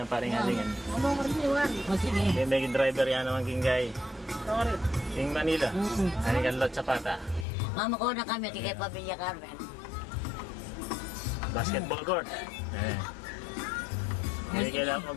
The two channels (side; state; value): right; drops out; at 7.5 s